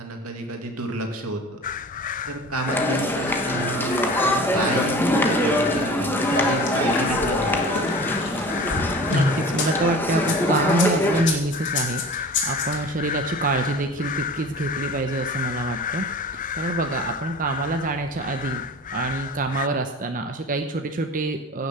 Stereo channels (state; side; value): normal; both; correlation 0.39